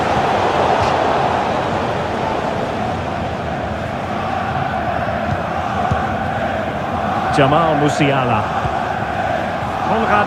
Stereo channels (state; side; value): identical; both; correlation 1.00